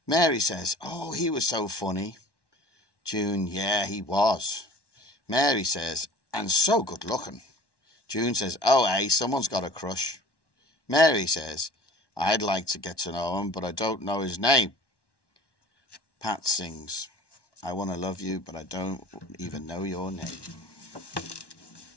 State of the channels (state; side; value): late; right; 1.1 ms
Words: Mary says, oh, he was so funny. June, yeah, he was. Mary says, and so good looking. June says, oh, hey, someone's got a crush. Mary says, I'd like to get to know him, but I don't know his name. Pat sings, I want to love you, but I don't even know your name.